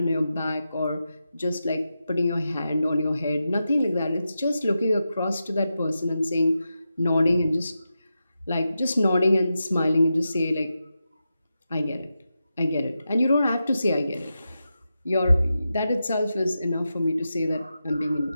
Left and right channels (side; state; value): both; inverted; correlation -0.90